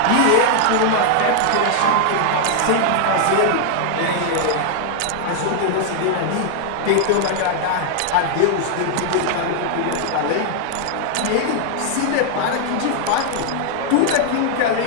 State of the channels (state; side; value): different; both; correlation 0.00